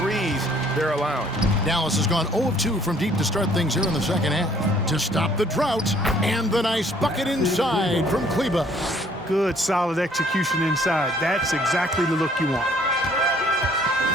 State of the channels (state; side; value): normal; both; correlation 0.60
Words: they're allowing. Dallas has gone 0 of 2 from deep to start things here in the second half. To stop the drought, and the nice bucket inside from Kleber. Good, solid execution inside. That's exactly the look you want.